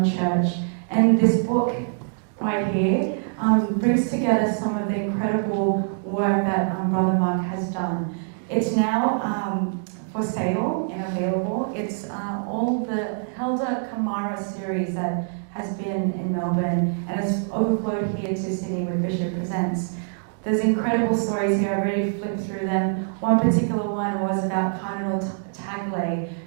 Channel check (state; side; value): silent; left; digital silence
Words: church. And this book right here brings together some of the incredible work that Brother Mark has done. It's now for sale and available. It's all the Helder Kamara series that has been in Melbourne and has overflowed here to Sydney with Bishop Presents. There's incredible stories here. I've already flipped through them. One particular one was about Cardinal Tagle,